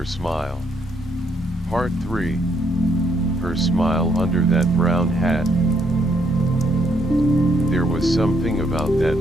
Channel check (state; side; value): normal; both; correlation 0.72